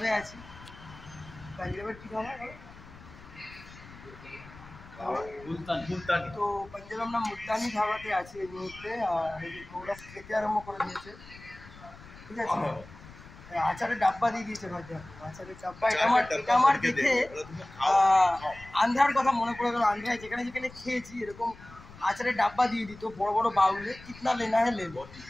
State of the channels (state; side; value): noise; left; rumble, 19 dB below the sound